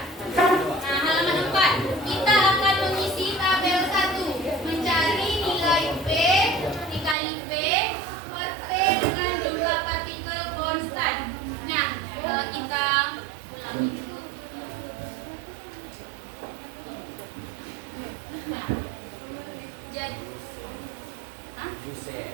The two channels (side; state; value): left; drops out; at 7.2 s